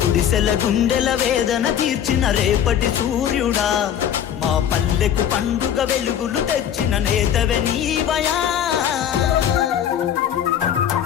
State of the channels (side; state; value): right; quieter; 9.6 dB